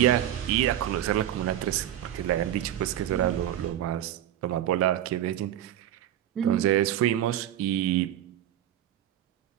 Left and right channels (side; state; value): left; quieter; 11.9 dB